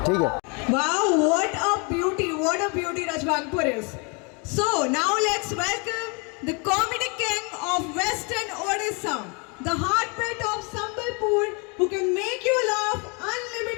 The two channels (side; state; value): right; quieter; 33.0 dB